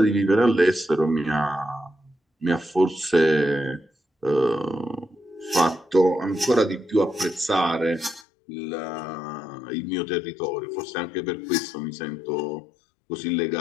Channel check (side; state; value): right; drops out; at 8.2 s